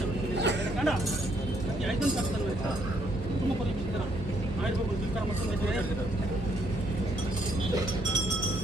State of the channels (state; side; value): normal; both; correlation 0.70